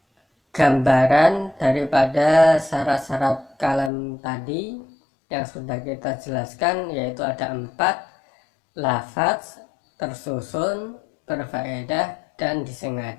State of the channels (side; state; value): right; drops out; at 3.9 s